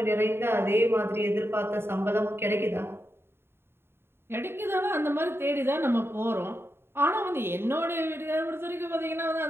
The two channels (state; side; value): late; left; 0.11 ms